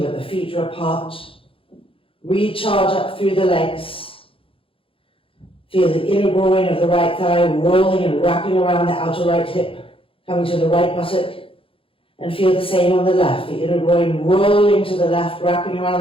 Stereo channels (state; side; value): late; right; 0.26 ms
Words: but the feet are apart. Recharge up through the legs. Feel the inner groin of the right thigh rolling and wrapping around the outer right hip, coming to the right buttock. And feel the same on the left, the inner groin rolling to the left, wrapping